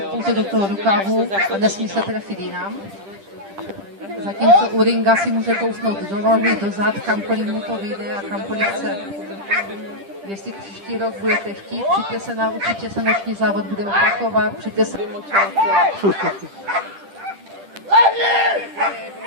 pouze do toho rukávu a nesmí se trefit jinam. Zatímco u ringa si může kousnout do nohy, do zad, kamkoliv mu to vyjde a kamkoliv chce. Jestli příští rok budete chtít, přijďte se na, určitě se noční závod bude opakovat, přijďte se...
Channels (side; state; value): left; late; 10 ms